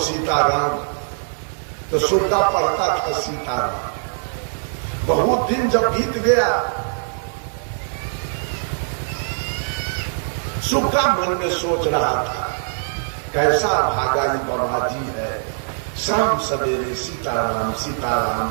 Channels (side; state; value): left; silent; digital silence